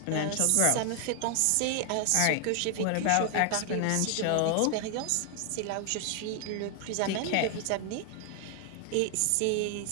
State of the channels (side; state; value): both; different; correlation 0.00